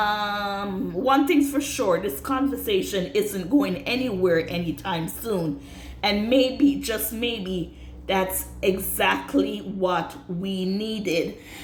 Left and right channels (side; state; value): both; identical; correlation 1.00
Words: thing's for sure, this conversation isn't going anywhere anytime soon. And maybe, just maybe, that's exactly what we needed.